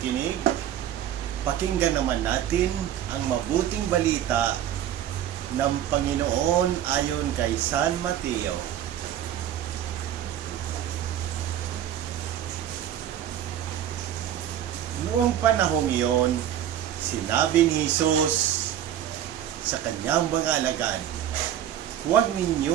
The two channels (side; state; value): left; quieter; 10.8 dB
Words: pakinggan naman natin ang mabuting balita ng Panginoon ayon kay San Mateo. Noong panahong iyon, sinabi ni Jesus sa kanyang mga alagad, "Huwag